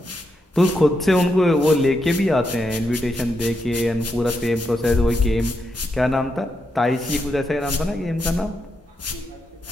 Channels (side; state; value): both; normal; correlation 0.83